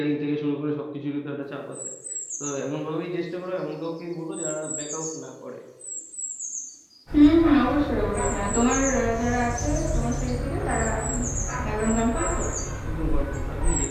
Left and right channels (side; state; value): both; identical; correlation 1.00